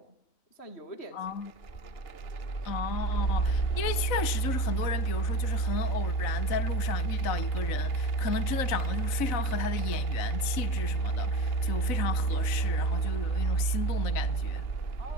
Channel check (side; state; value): right; late; 3.9 ms